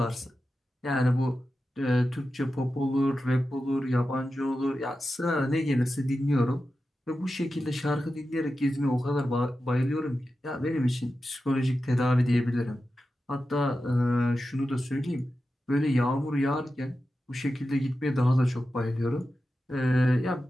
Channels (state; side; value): normal; both; correlation 0.92